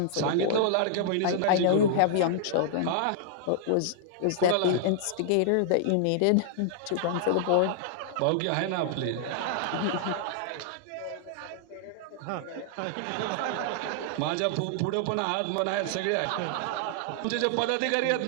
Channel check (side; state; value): both; different; correlation -0.01